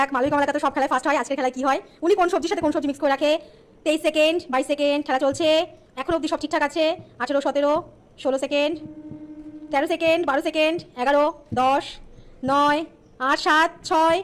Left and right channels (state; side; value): identical; both; correlation 1.00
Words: মালবিক কমলাকা তো সব খেলায় ফার্স্ট হয়, আজকের খেলায় কি হয়। উনি কোন সবজির সাথে কোন সবজি মিক্স করে রাখে। 23 সেকেন্ড, 22 সেকেন্ড। খেলা চলছে। এখন অবধি সব ঠিকঠাক আছে। 18, 17, 16 সেকেন্ড, 13 সেকেন্ড, 12 সেকেন্ড, 11, 10, 9, 8, 7, 6,